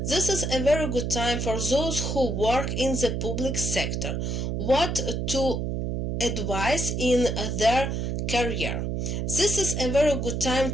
This is a very good time for those who work in the public sector. What to advise in their career. This is a very good time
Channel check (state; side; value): noise; right; hum, 1 dB below the sound